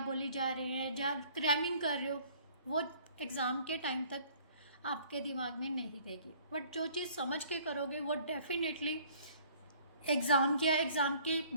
बोली जा रहे हैं, या क्रैमिंग कर रहे हो, वो एग्ज़ाम के टाइम तक आपके दिमाग में नहीं रहेगी। बट जो चीज़ समझ के करोगे वो डेफिनेटली एग्ज़ाम के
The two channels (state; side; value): inverted; both; correlation -0.55